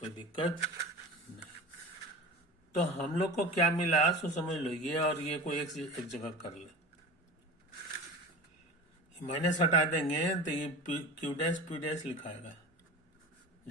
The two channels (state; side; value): normal; both; correlation 0.33